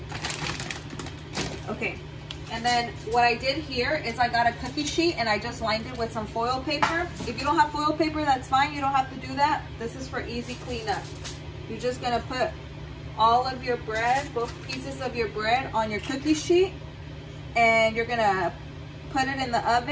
Okay, and then what I did here is I got a cookie sheet and I just lined it with some foil paper. If you don't have foil paper, that's fine. You don't have to do that. This is for easy cleanup. You're just gonna put all of your bread, both pieces of your bread, on your cookie sheet, and you're gonna put it in the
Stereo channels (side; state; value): both; identical; correlation 1.00